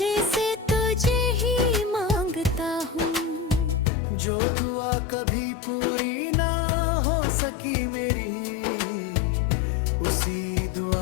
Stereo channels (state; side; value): drops out; right; at 3.9 s